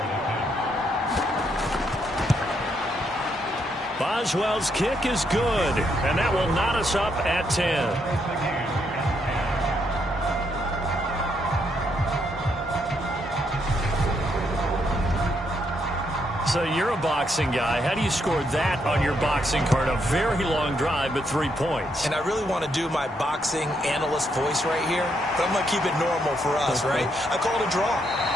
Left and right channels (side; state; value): both; normal; correlation 0.76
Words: Boswell's kick is good, and that will knot us up at 10. So you're a boxing guy. How do you score that on your boxing card? A very long drive, but 3 points. And I really want to do my boxing analyst voice right here, but I'm going to keep it normal for us, right? I call it a draw.